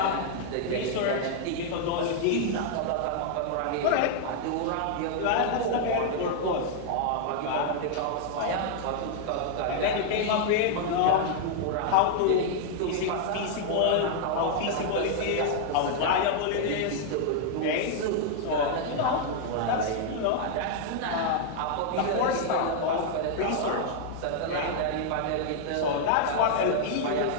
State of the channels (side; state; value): both; different; correlation -0.01